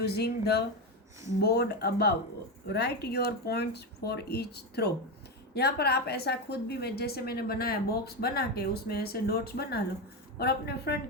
the board above. Write your points for each throw. यहाँ पर आप ऐसा खुद भी जैसे मैंने बनाया बॉक्स बना के उसमें ऐसे डॉट्स बना लो और अपने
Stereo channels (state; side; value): normal; both; correlation 0.13